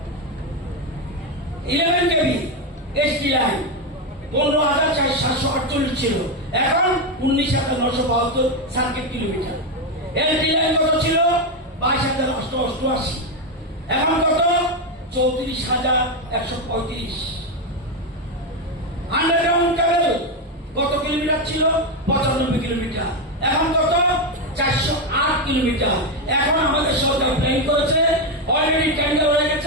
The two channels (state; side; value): normal; both; correlation 0.08